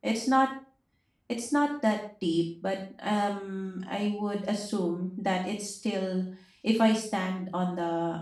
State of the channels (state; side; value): identical; both; correlation 1.00